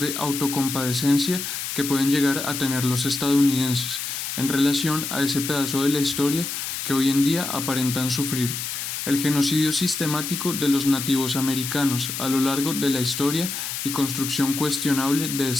autocompadecencia que pueden llegar a tener los estadounidenses en relación a ese pedazo de la historia que hoy en día aparentan sufrir, el genocidio sistemático de los nativos americanos a lo largo de la historia y construcción cuestionable de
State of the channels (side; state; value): left; noise; hiss, 5 dB below the sound